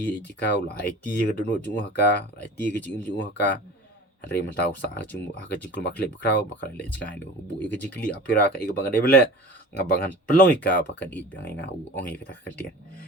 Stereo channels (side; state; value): both; normal; correlation 0.39